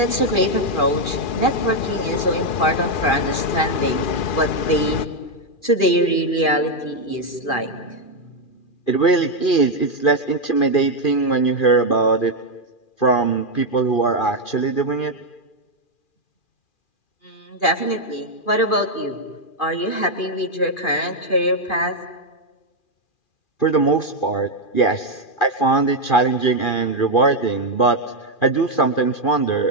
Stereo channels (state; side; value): late; right; 2.4 ms